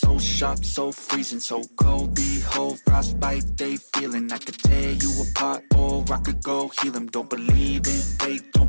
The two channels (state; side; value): inverted; both; correlation -1.00